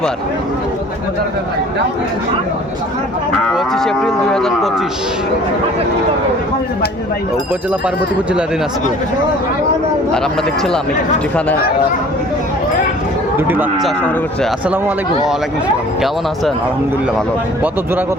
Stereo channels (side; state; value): both; normal; correlation 0.49